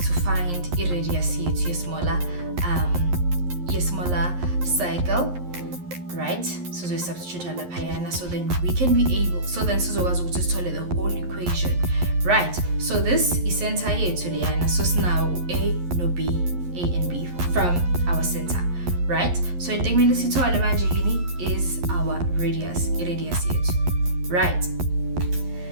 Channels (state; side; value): late; left; 11 ms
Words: find a radius here to a smaller cycle. Right, so we substitute a lapayana, so then we can be able, so then Suzoga's will just tell the whole equation, right? So this is center here to Liana, so now A no B, A and B from our center, right? So in Tegmelisi to Alamajini is our radius here, right?